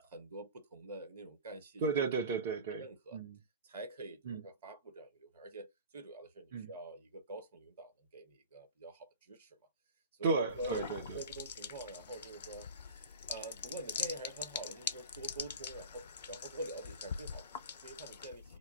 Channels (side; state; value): both; inverted; correlation -0.33